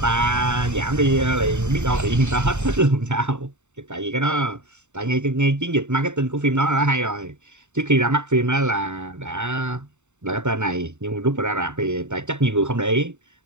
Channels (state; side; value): late; left; 0.84 ms